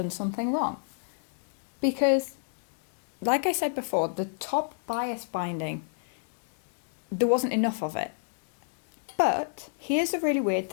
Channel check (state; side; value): silent; right; digital silence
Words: something wrong because, like I said before, the top bias binding, there wasn't enough of it. But here's a really weird